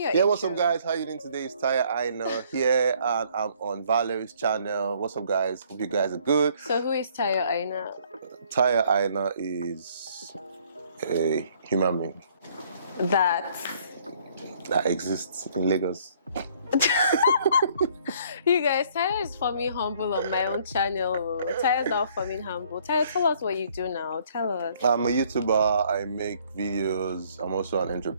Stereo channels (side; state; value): both; inverted; correlation -0.62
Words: Yeah, intro. what's up guys? How you doing today? It's Tayo Aina here and I'm on Valerie's channel. What's up guys? Hope you guys are good. So who is Tayo Aina? Tayo Aina is a human being That exists in Lagos. you guys, Tayo is forming humble on my own channel. Tayo's not forming humble. Tayo, tell us what you do now. Tell us. I'm a YouTuber. I make videos. I'm also an